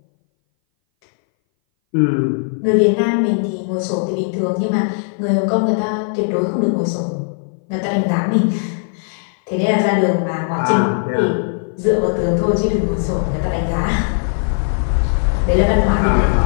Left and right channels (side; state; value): right; silent; 61 dB below the other